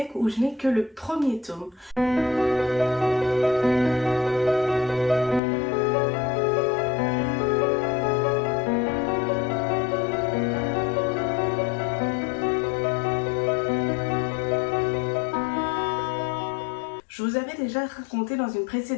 où je n'ai que le premier tome. Je vous avais déjà raconté dans une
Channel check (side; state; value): right; drops out; at 5.4 s